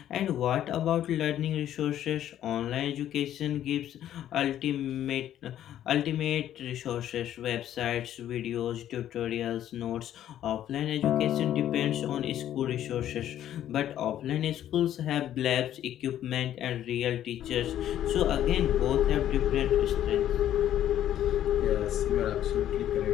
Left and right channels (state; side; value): quieter; right; 11.5 dB